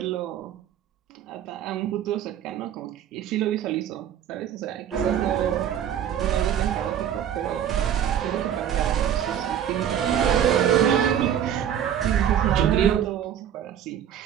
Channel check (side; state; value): left; quieter; 9.7 dB